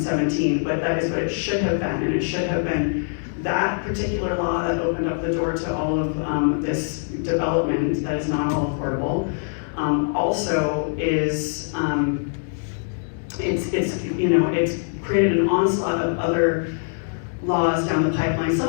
but that is what it should have been. And it should have been that particular law that opened up the door to all of this development that is not all affordable. Also is it's created an onslaught of other laws down the pipeline,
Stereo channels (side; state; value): right; silent; digital silence